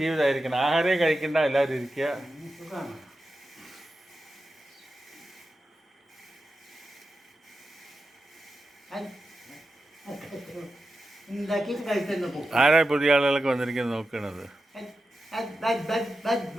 ആഹാരമേ കഴിക്കണ്ട, എല്ലാവരും ഇരിക്കുക. ആരാ പുതിയ ആളുകളൊക്കെ വന്നിരിക്കുന്നത് നോക്കണത്?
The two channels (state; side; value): normal; both; correlation 0.91